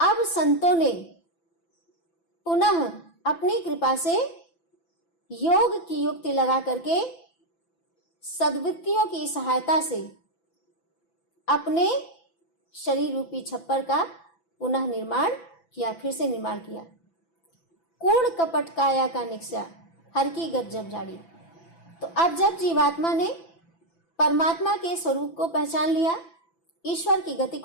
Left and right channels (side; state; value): right; late; 6.0 ms